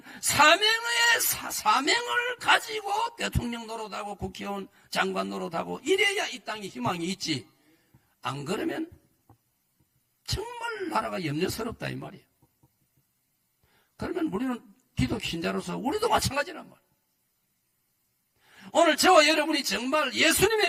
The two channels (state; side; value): identical; both; correlation 1.00